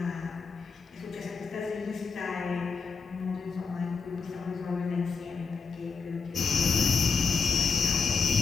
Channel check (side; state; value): right; quieter; 5.4 dB